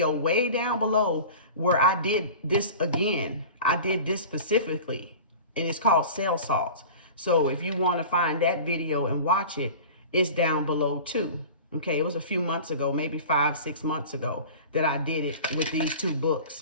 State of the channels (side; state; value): both; inverted; correlation -0.37